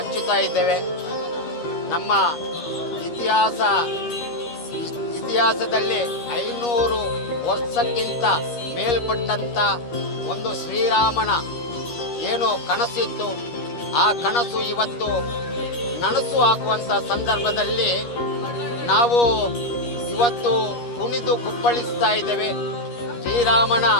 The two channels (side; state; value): right; late; 13 ms